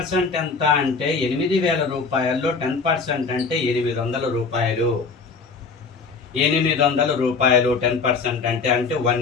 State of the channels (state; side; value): quieter; right; 4.7 dB